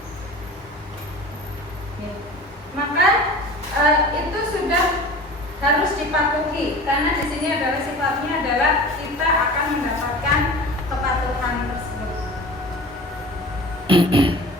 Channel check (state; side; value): normal; both; correlation 0.38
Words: itu sudah harus dipatuhi karena di sini adalah sifatnya adalah kita akan mendapatkan kepatuhan tersebut.